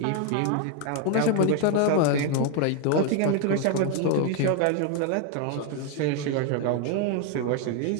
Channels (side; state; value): both; different; correlation 0.01